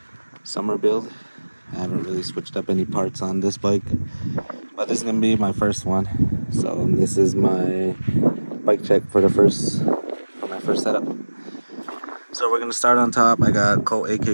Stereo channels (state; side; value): inverted; both; correlation -1.00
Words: summer build. I haven't really switched up any parts on this bike, but this is going to be my first one. So this is my bike check for my first setup. So we're going to start on top. I got Colt